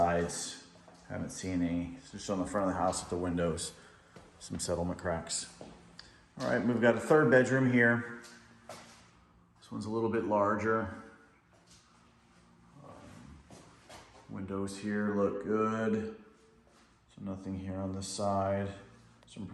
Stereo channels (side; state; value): both; identical; correlation 1.00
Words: haven't seen any. It's just on the front of the house at the windows, some settlement cracks. All right, we've got a third bedroom here. This one's a little bit larger. Windows here look good. So nothing here on this side. Some